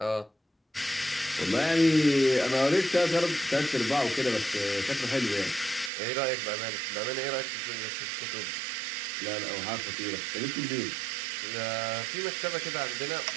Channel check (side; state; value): left; drops out; at 5.9 s